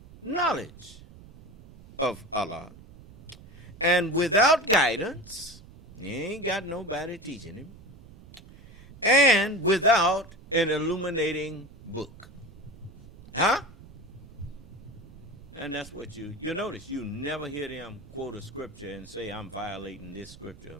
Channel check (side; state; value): right; noise; rumble, 20 dB below the sound